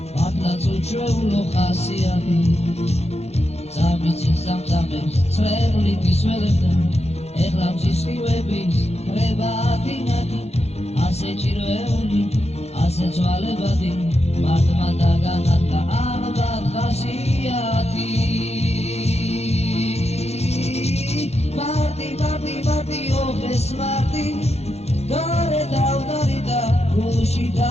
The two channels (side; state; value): right; late; 0.31 ms